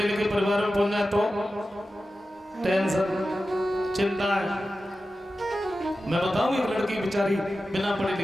लिखे परिवार में पहुंच जाए तो टेंशन, चिंता है। मैं बताऊं, एक लड़की बेचारी बिना पढ़ी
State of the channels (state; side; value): normal; both; correlation 0.93